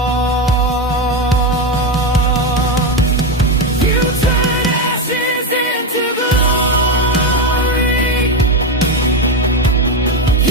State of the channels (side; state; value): both; normal; correlation 0.12